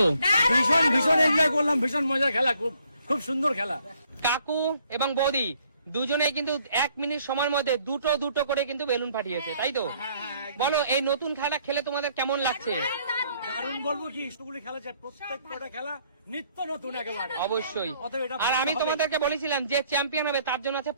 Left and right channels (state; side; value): inverted; both; correlation -0.65